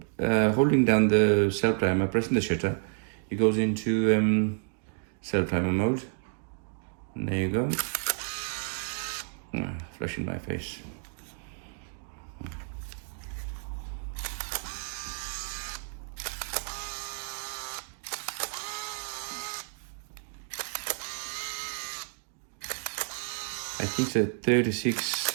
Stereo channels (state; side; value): silent; left; digital silence